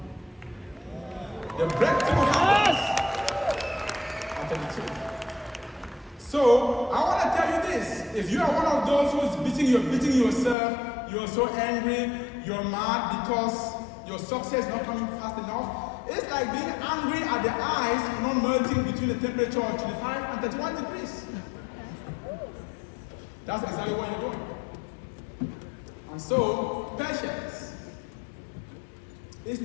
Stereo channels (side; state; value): right; drops out; at 10.6 s